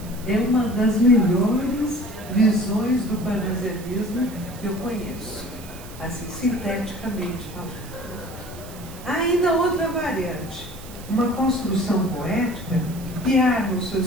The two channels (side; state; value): right; noise; hiss, 18 dB below the sound